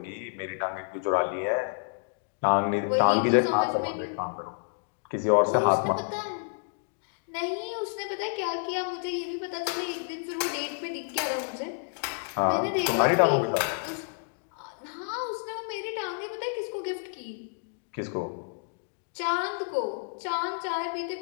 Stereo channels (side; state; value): right; silent; digital silence